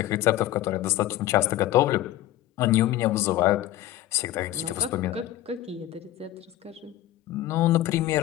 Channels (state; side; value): quieter; right; 14.1 dB